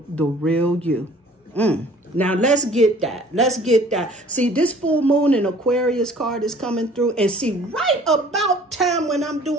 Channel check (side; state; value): both; normal; correlation 0.52